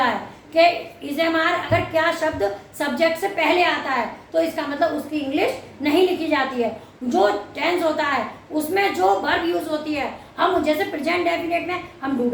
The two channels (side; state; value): both; identical; correlation 1.00